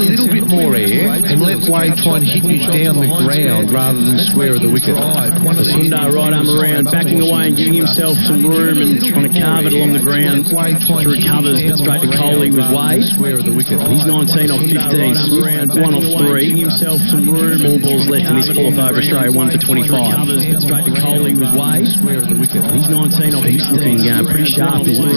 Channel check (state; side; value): inverted; both; correlation -0.99